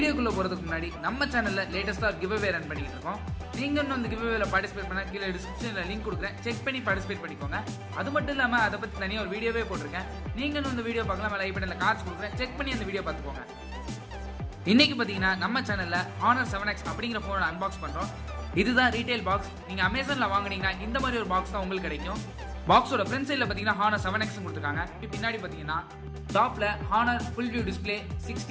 போறதுக்கு முன்னாடி நம்ம சேனல்ல லேட்டஸ்டா கிவ்அவே ரன் பண்ணிட்டு இருக்கோம். நீங்க இன்னும் அந்த கிவ்அவேல பார்ட்டிசிபேட் பண்ணா கீழே டிஸ்கிரிப்ஷன்ல லிங்க் கொடுக்குறேன், செக் பண்ணி பார்ட்டிசிபேட் பண்ணிக்கோங்க. அது மட்டும் இல்லாம அதை பத்தி தனியாக ஒரு வீடியோவே போட்டிருக்கேன். நீங்க இன்னும் இந்த வீடியோ பார்க்கலாம், லைக் பட்டன்ல கார்ட்ஸ் கொடுக்குறேன், செக் பண்ணி அந்த வீடியோ பார்த்துக்கோங்க. இன்னைக்கு பார்த்தீங்கன்னா நம்ம சேனல்ல Honor 7X அப்படிங்கிற போனோட அன்பாக்ஸ் பண்றோம். இதுதான் ரீட்டைல் பாக்ஸ். நீங்க அமேசான்ல வாங்குனீங்கன்னா இந்த மாதிரி ஒரு பாக்ஸ் தான் உங்களுக்கு கிடைக்கும். பாக்ஸோட ஃப்ரண்ட் சைடில் பார்த்தீங்கன்னா Honor 7X கொடுத்துருக்காங்க. பின்னாடி பார்த்தீங்கன்னா டாப்ல Honor full view display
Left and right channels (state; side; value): identical; both; correlation 1.00